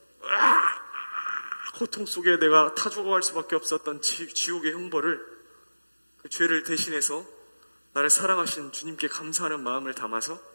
고통 속에 내가 타 죽어갈 수밖에 없었던 지옥의 형벌을, 그 죄를 대신해서 나를 사랑하신 주님께 감사하는 마음을 담아서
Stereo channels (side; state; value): both; inverted; correlation -1.00